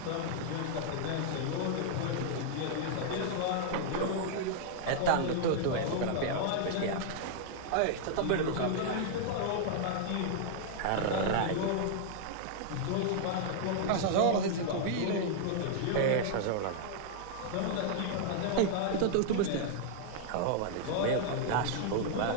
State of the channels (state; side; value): different; both; correlation -0.01